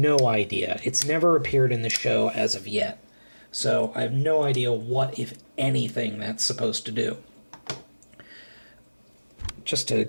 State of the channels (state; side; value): inverted; both; correlation -1.00